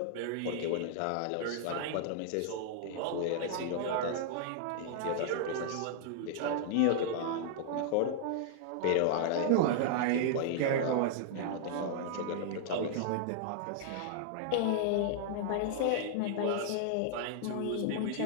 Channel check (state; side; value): different; both; correlation -0.01